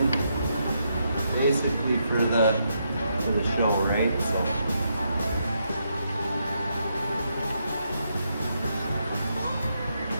basically for the show, right? So.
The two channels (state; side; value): inverted; both; correlation -0.79